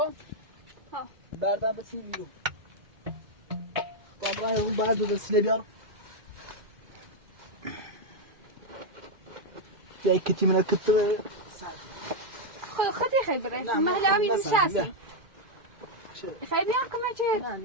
بردم بسیم ایرو طبعا اون بعد وسیله بیار یا کتی من کت خودی خیلی بره محل همین نشستی خیلی بیار کمه چه نه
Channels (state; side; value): late; left; 2.3 ms